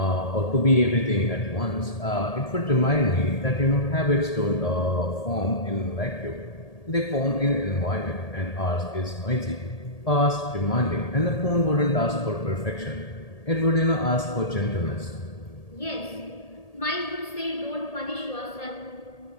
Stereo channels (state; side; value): late; right; 1.8 ms